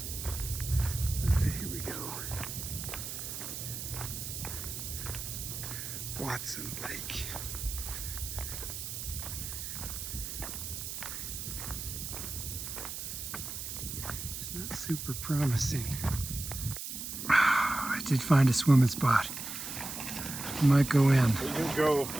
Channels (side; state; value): right; noise; hiss, 6 dB below the sound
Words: All right, here we go. Watson Lake. It's not super promising. I did find a swimming spot. Might go in. You can go.